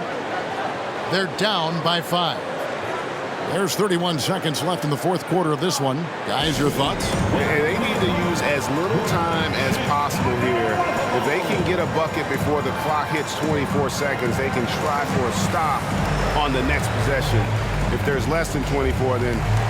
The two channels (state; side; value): identical; both; correlation 1.00